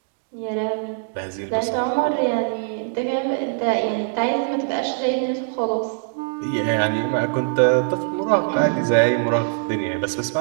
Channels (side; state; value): left; silent; digital silence